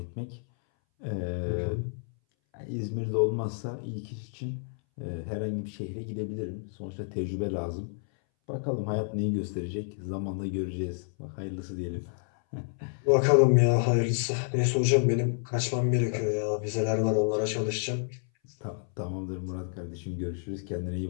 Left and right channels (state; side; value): silent; right; 58 dB below the other